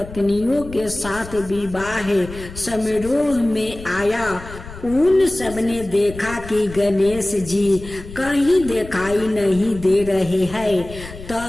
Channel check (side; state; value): left; noise; rumble, 14 dB below the sound